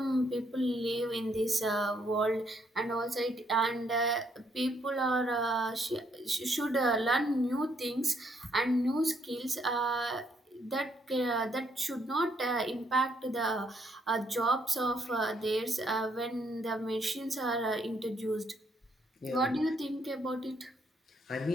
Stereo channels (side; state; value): both; normal; correlation 0.71